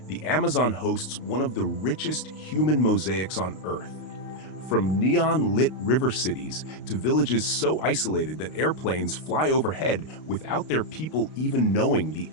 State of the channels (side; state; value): right; late; 32 ms